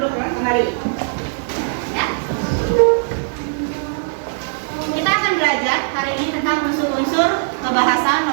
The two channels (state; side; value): silent; left; 66 dB below the other